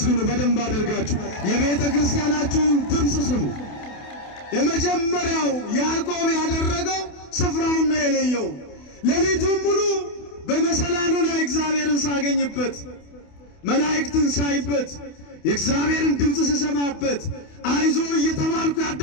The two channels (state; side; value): late; right; 28 ms